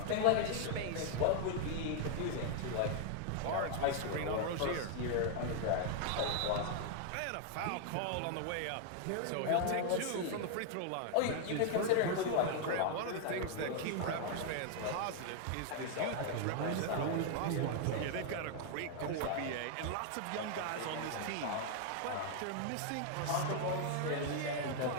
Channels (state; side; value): different; both; correlation 0.00